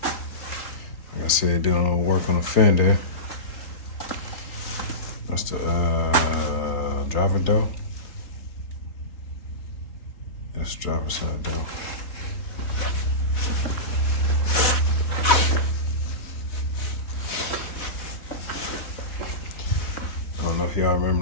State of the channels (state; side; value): late; right; 3.8 ms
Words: Like I said, doing a little work on the fender. That's the driver door. That's driver side door. I don't know if y'all remember